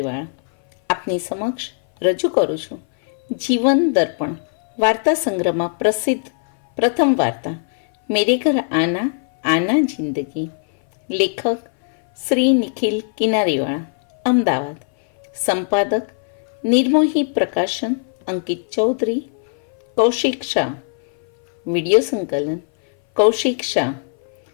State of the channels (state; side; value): silent; right; 60 dB below the other